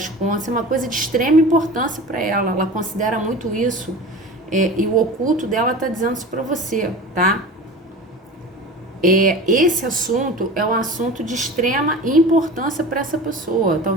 contas. É uma coisa de extrema importância para ela, ela considera muito isso, e o oculto dela tá dizendo isso para você, tá? Esse assunto é um assunto de extrema importância para essa pessoa.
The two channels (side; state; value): both; normal; correlation 0.35